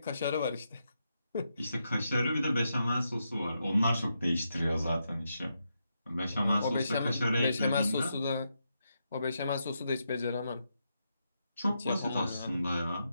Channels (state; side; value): inverted; both; correlation -0.84